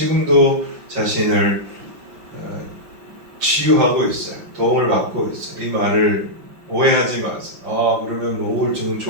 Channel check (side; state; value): left; late; 5.5 ms